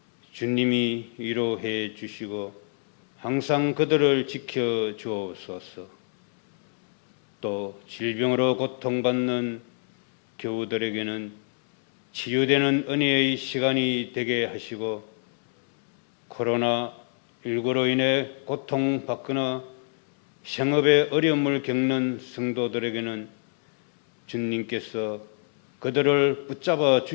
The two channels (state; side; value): silent; right; digital silence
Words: 주님이 위로해 주시고 항상 그들을 지켜 주옵소서. 또 질병으로 고통받는 교우들에게는 치유되는 은혜의 시간이 되게 하시고 코로나19로 인해 고통받거나 생업에 어려움을 겪는 성도들에게는 주님께서 그들을 붙잡아